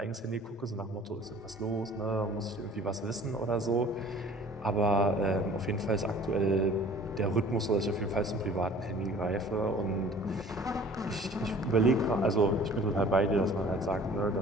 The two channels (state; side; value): normal; both; correlation 0.48